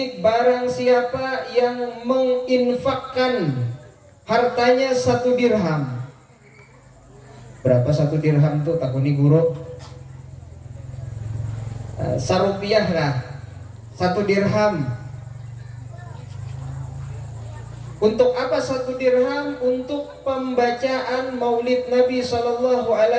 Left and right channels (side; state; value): both; identical; correlation 1.00